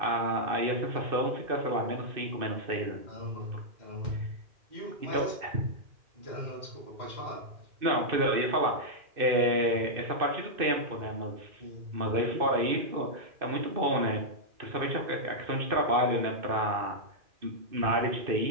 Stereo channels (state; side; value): late; left; 2.6 ms